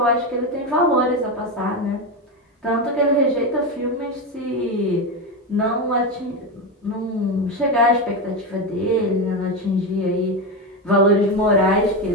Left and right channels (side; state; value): both; normal; correlation 0.14